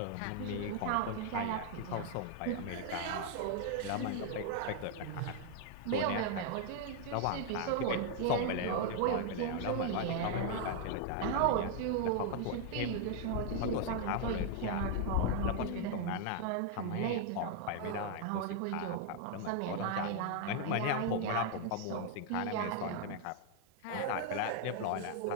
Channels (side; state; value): both; different; correlation 0.00